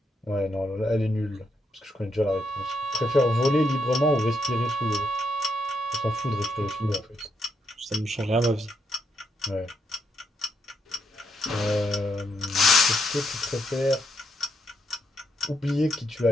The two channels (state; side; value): normal; both; correlation 0.78